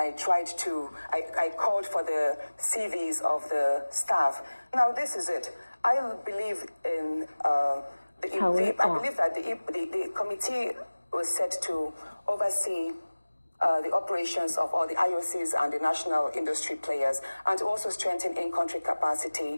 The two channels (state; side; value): inverted; both; correlation -1.00